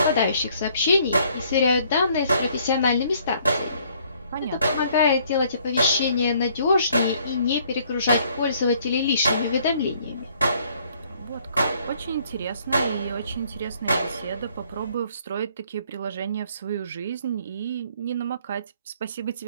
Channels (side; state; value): both; inverted; correlation -0.63